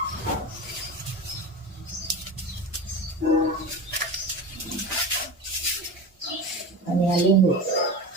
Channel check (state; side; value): normal; both; correlation 0.28